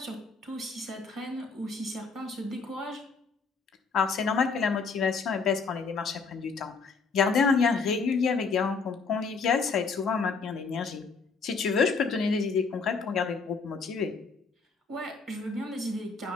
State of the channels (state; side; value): quieter; right; 4.7 dB